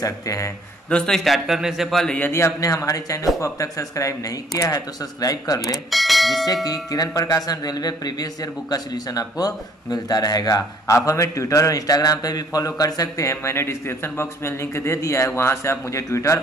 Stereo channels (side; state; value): both; normal; correlation 0.60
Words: हैं। दोस्तों, स्टार्ट करने से पहले यदि आपने हमारे चैनल को अब तक सब्सक्राइब नहीं किया है तो सब्सक्राइब कर ले, जिससे कि किरण प्रकाशन रेलवे प्रीवियस ईयर बुक का सॉल्यूशन आपको मिलता रहेगा। आप हमें ट्विटर और इंस्टाग्राम पे भी फॉलो कर सकते हैं। मैंने डिस्क्रिप्शन बॉक्स में लिंक दे दिया है, वहां से आप मुझे ट्विटर